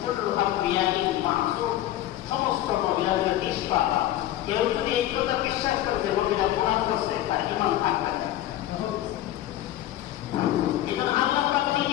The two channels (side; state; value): right; quieter; 13.6 dB